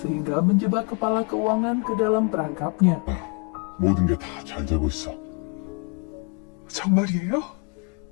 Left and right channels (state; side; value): quieter; right; 34.6 dB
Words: menjebak kepala keuangan ke dalam perangkapnya. 모든 게 다 잘 되고 있어. 정말이에요?